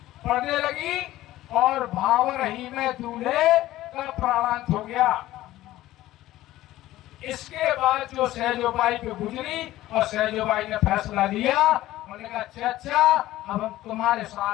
पढ़ने लगी और भावर ही में दूल्हे का प्राणांत हो गया। इसके बाद जो सहजोबाई पे गुजरी और सहजोबाई ने फैसला लिया, उन्होंने कहा अच्छा अब हम तुम्हारे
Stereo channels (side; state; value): right; quieter; 15.5 dB